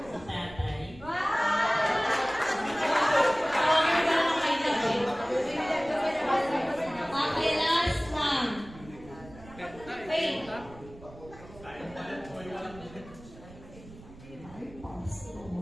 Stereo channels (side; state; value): right; noise; rumble, 19 dB below the sound